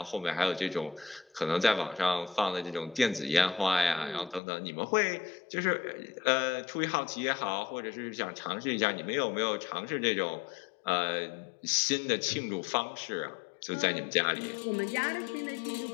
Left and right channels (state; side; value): drops out; right; at 4.4 s